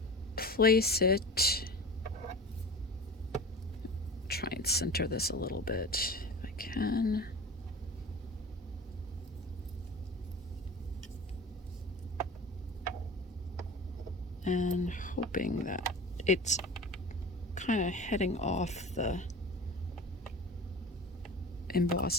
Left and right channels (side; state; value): both; normal; correlation 0.35